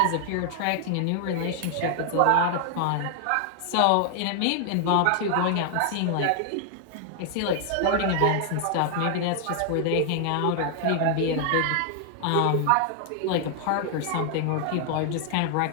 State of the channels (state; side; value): different; both; correlation 0.00